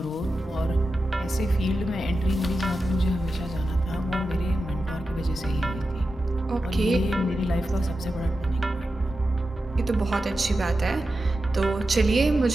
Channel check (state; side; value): normal; both; correlation 0.91